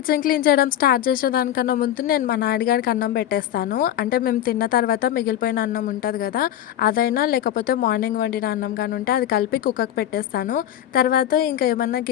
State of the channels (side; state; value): right; quieter; 11.4 dB